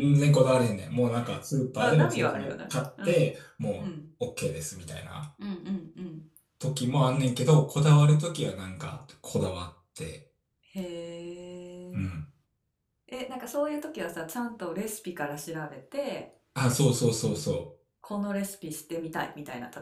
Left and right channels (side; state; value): both; identical; correlation 1.00